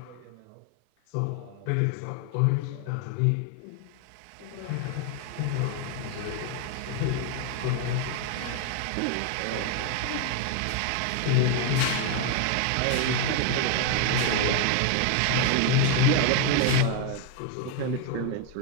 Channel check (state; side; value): different; both; correlation 0.01